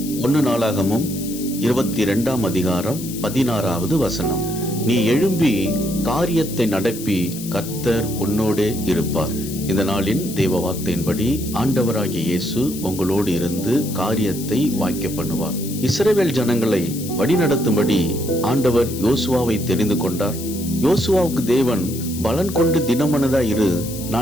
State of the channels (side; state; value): left; noise; hiss, 11 dB below the sound